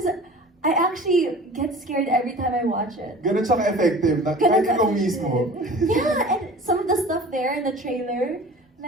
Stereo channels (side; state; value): both; normal; correlation 0.42